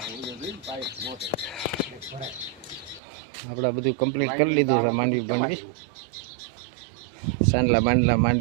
આપણે બધું કમ્પ્લીટ કરી લીધું છે, માંડવી બાંડવી સાંડલા બાંડલા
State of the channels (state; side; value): drops out; left; at 3.0 s